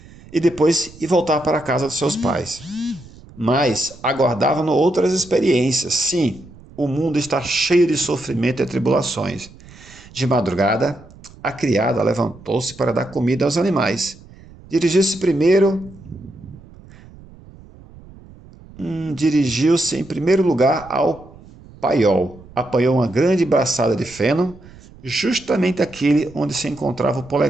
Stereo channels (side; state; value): right; noise; rumble, 21 dB below the sound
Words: e depois ir voltar para a casa dos seus pais. Mas aguardavam-no outras experiências. Sim, o mundo está cheio de sofrimento e tribulações. De madrugada, a criada levantou-se para dar comida aos animais. Dirigiu-se em primeiro lugar ao paiol. Apanhou uma grande braçada de feno, justamente aquele onde se encontrava o